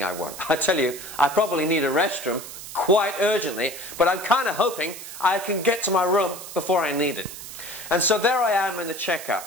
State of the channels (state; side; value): noise; right; hiss, 12 dB below the sound